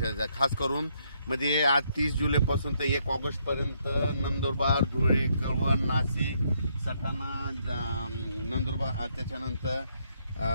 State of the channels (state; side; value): inverted; both; correlation -0.73